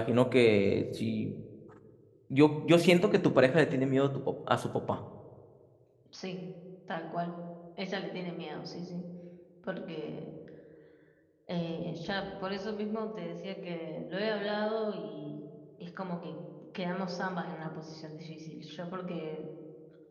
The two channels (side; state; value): both; identical; correlation 1.00